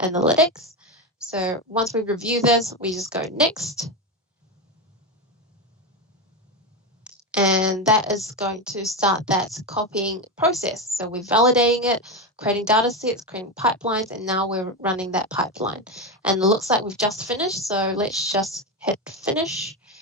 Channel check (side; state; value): both; normal; correlation 0.14